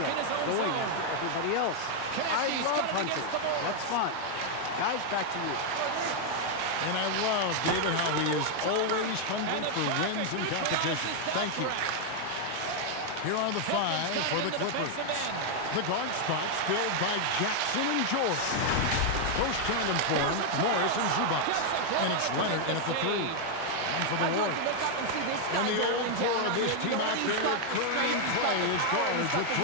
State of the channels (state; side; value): different; both; correlation 0.00